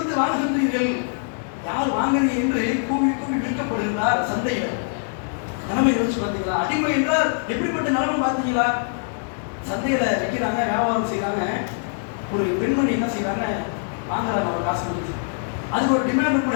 வாங்குகின்றீர்கள், யார் வாங்குறீங்க என்று கூவி கூவி விற்கப்படுகிறார் சந்தையில். நிலைமை யோசிச்சு பார்த்தீங்களா? அடிமை என்றால் எப்படிப்பட்ட நிலைமை பார்த்தீங்களா? சந்தையில விற்கிறாங்க, வியாபாரம் செய்யறாங்க. ஒரு பெண்மணி என்ன செய்யறாங்க, வாங்குறாங்க அவர் காசு கொடுத்து. அதுக்கு ஒரு டிமாண்ட்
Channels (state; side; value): silent; right; 63 dB below the other